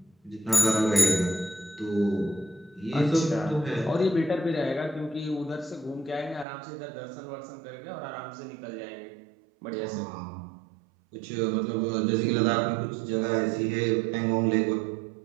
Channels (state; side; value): drops out; left; at 6.5 s